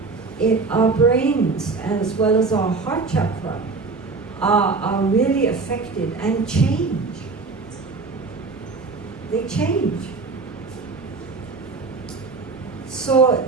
our brains, as well as our heart chakra, are really affected and change. They change. So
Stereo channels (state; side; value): quieter; left; 4.1 dB